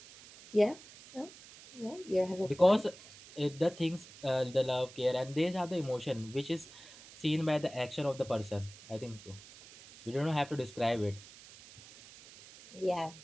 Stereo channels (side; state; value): right; noise; hiss, 19 dB below the sound